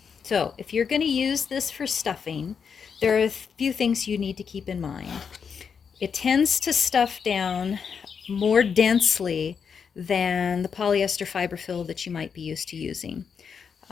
So if you're going to use this for stuffing, there are a few things you need to keep in mind. It tends to stuff down more densely than the polyester fiber fill that you might be used to using.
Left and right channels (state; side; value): quieter; right; 6.5 dB